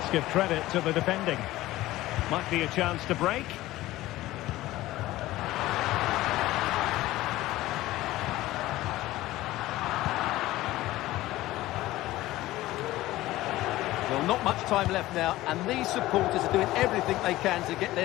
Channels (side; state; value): right; quieter; 16.8 dB